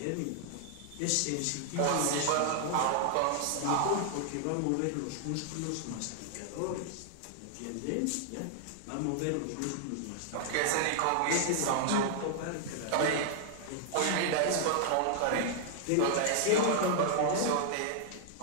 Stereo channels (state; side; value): different; both; correlation 0.00